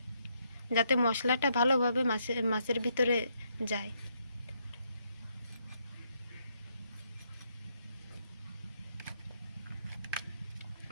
যাতে মশলাটা ভালোভাবে মাছের ভিতরে যায়।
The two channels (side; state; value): both; inverted; correlation -0.75